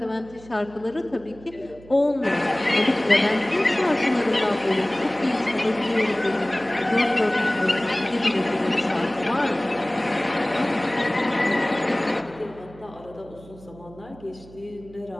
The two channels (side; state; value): right; noise; hum, 21 dB below the sound